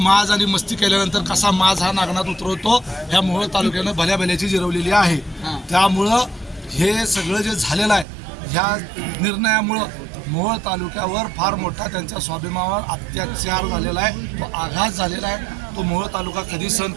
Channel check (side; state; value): left; drops out; at 8.1 s